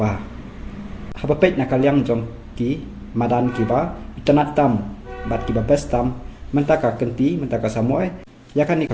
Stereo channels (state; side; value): identical; both; correlation 1.00